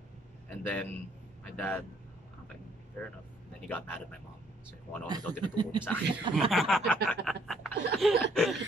then my dad, okay, fair enough. And then he got mad at my mom. So kung ano daw tinuturo niya sa akin.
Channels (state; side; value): normal; both; correlation 0.65